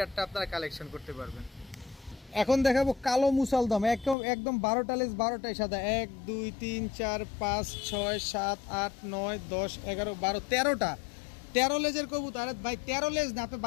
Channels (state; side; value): drops out; right; at 4.2 s